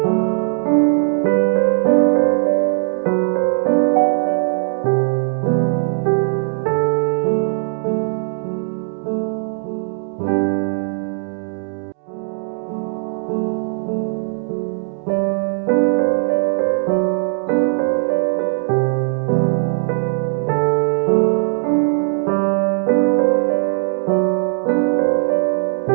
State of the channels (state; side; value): silent; left; digital silence